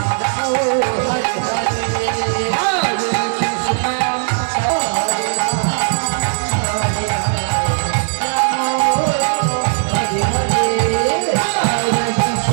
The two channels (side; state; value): left; silent; digital silence